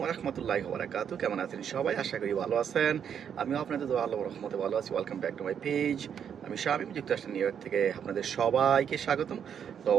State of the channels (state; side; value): quieter; left; 8.1 dB